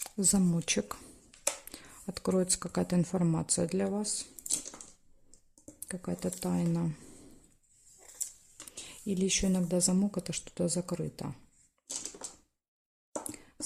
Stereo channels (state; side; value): identical; both; correlation 1.00